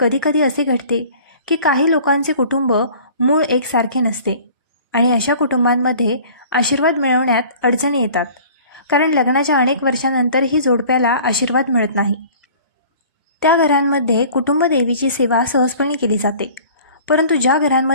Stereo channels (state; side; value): inverted; both; correlation -0.47